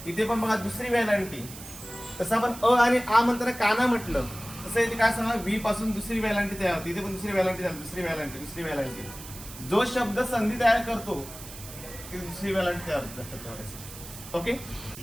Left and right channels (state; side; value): noise; right; hiss, 14 dB below the sound